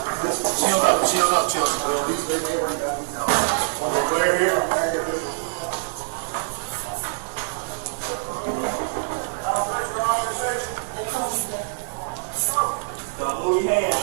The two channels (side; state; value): left; silent; 62 dB below the other